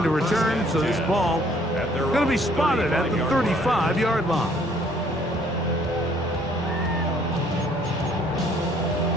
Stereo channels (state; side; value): normal; both; correlation 0.62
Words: a return, so this ball going to be spotted at the 35-yard line.